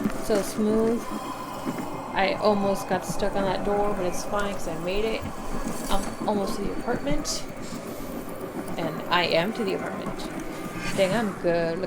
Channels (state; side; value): identical; both; correlation 1.00